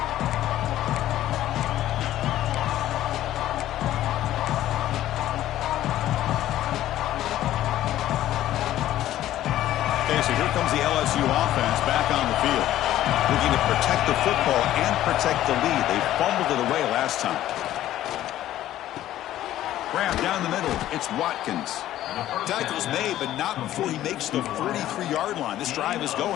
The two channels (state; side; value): quieter; right; 13.4 dB